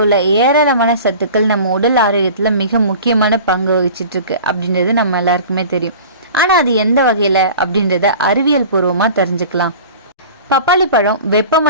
உள்ள ஏராளமான சத்துக்கள் நம்ம உடல் ஆரோக்கியத்துல மிக முக்கியமான பங்கு வகிச்சிட்டு இருக்கு அப்படின்றது நம்ம எல்லாருக்குமே தெரியும். ஆனா அது எந்த வகையில அப்படின்றத அறிவியல் பூர்வமா தெரிஞ்சுக்கலாம். பப்பாளி பழம்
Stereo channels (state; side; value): inverted; both; correlation -0.40